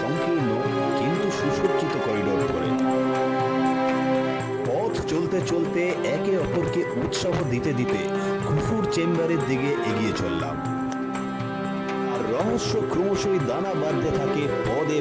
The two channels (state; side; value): identical; both; correlation 1.00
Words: সংকীর্ণ কিন্তু সুসজ্জিত করিডোর ধরে। পথ চলতে চলতে একে অপরকে উৎসাহ দিতে দিতে খুফুর চেম্বারের দিকে এগিয়ে চললাম। আর রহস্য ক্রমশই দানা বাঁধতে থাকে পদে